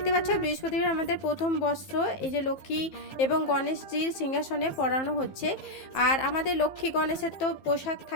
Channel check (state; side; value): late; right; 15 ms